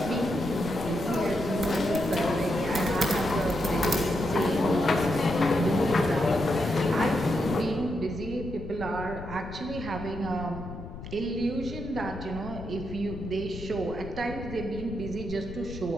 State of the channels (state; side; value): noise; left; rumble, 11 dB below the sound